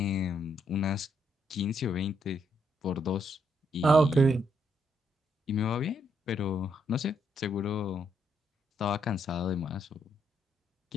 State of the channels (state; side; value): normal; both; correlation 0.75